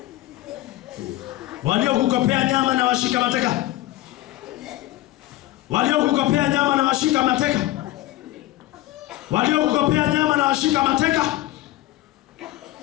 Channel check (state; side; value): quieter; right; 16.2 dB